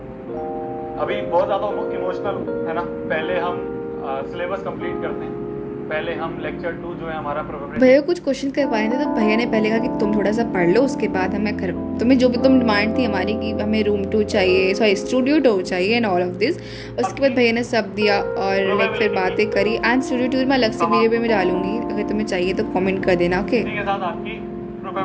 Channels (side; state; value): both; identical; correlation 1.00